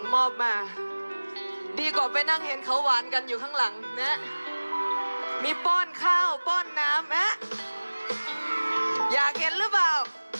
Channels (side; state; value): both; inverted; correlation -1.00